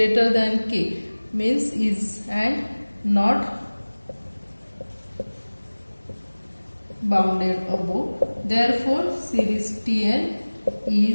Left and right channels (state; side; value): inverted; both; correlation -1.00